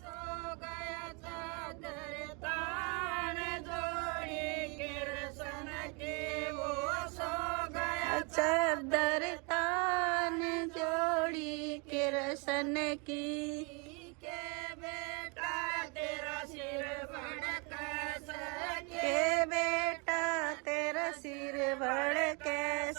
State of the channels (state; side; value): quieter; left; 32.5 dB